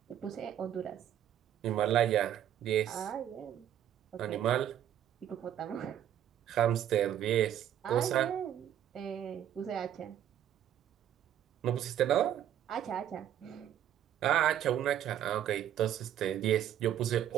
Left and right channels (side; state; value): left; quieter; 10.6 dB